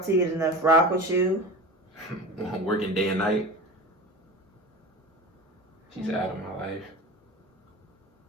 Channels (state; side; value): normal; both; correlation 0.32